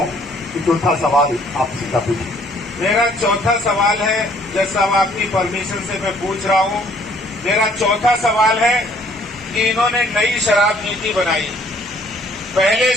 कि चौथा सवाल आप सीधा पूछिए। मेरा चौथा सवाल है, जैसा आपकी परमिशन से मैं पूछ रहा हूं, मेरा चौथा सवाल है कि इन्होंने नई शराब नीति बनाई। पहले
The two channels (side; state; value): both; normal; correlation 0.61